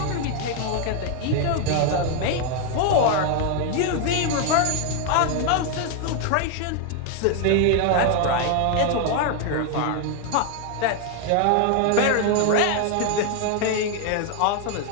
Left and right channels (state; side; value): different; both; correlation 0.00